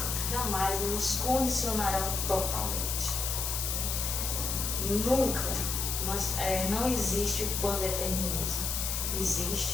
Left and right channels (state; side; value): noise; left; hiss, 1 dB below the sound